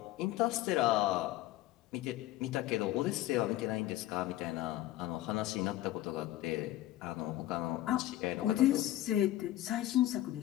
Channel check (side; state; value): right; quieter; 14.8 dB